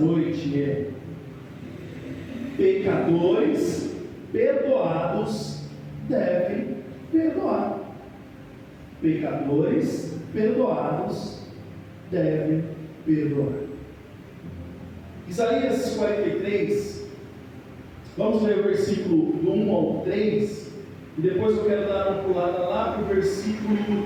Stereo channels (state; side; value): identical; both; correlation 1.00